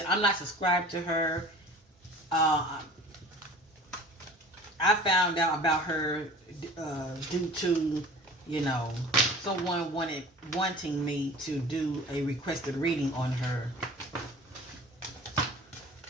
I'm not subscribed to her. I found out about her due to, someone wanting me to do a requested reading on her.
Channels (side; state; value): both; normal; correlation 0.43